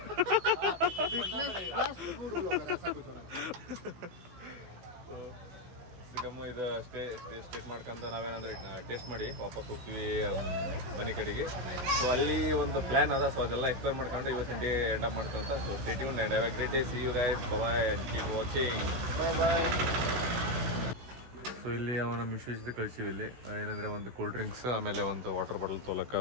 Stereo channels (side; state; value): left; late; 16 ms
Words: फिटनेस प्लस फूड ब्लॉगर ऐसा कुछ होना चाहिए. ಸಿಗಮ್ಮ ಇದು ಸ್ಟೇಟ್ ಮಾಡ್ಕೊಂತ ನಾವೇನಂದ್ರೆ ಟೇಸ್ಟ್ ಮಾಡಿ ವಾಪಸ್ ಹೋಗ್ತೀವಿ ಮನೆ ಕಡೆಗೆ. ಸೊ ಅಲ್ಲಿ ಒಂದು ಪ್ಲ್ಯಾನ್ ಅದ. ಸೊ ಅದೆಲ್ಲ ಎಕ್ಸ್ಪ್ಲೇನ್ ಮಾಡ್ಕೊಂಡು ಇವತ್ತಿನ ಡೇ ಎಂಡ್ ಅಪ್ ಮಾಡ್ತೀವಿ ಅಂತ. So stay tuned and have a great day. See you guys, bye and keep watching. Bye. So ಇಲ್ಲಿ ಅವನ ಮಿಶ್ವಿಸಿದ ಕಳಿಸಿವಿ. ಇಲ್ಲಿ ಏನಂದರೆ ಒಂದು ಕೂಲ್ ಡ್ರಿಂಕ್ಸ್, ಆಮೇಲೆ ಒಂದು ವಾಟರ್ ಬಾಟಲ್ ತೊಗೊಳಕ್ಕೆ,